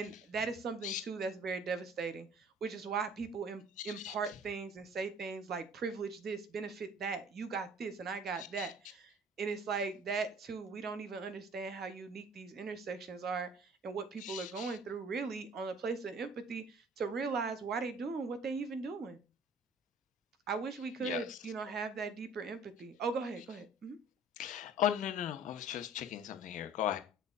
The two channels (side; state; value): both; normal; correlation 0.50